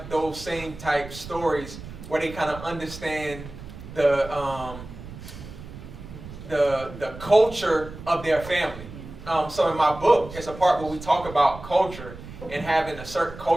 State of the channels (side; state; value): right; noise; rumble, 14 dB below the sound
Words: those same type stories where they kind of understand the culture of their family. So in my book, it's a part where we talk about culture and having a certain